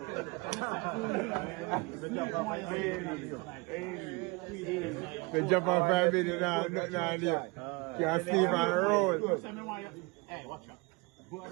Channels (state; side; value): quieter; left; 26.8 dB